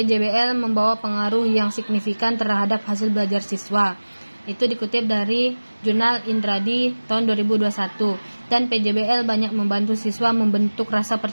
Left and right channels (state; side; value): inverted; both; correlation -1.00